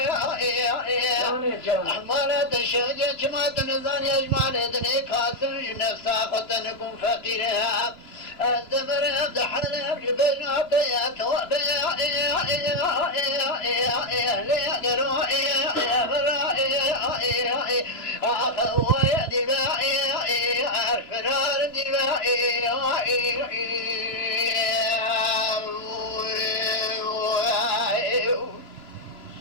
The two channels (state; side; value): late; right; 3.0 ms